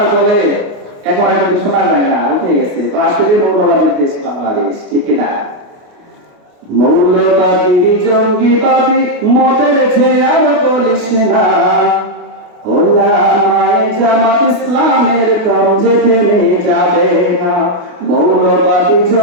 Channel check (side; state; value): left; late; 28 ms